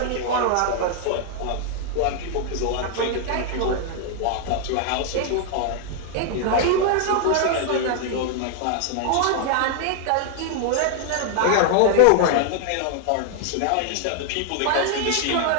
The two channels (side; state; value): both; different; correlation 0.00